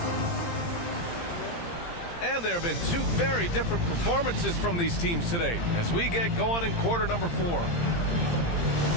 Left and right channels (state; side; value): late; right; 17 ms